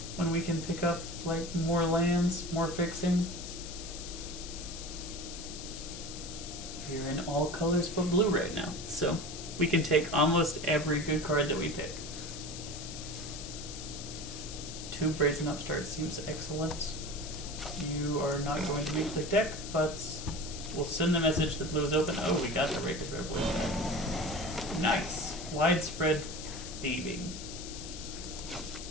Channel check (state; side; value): noise; left; hiss, 10 dB below the sound